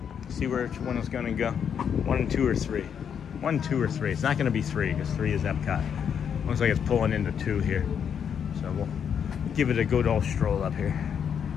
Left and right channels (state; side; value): quieter; right; 7.8 dB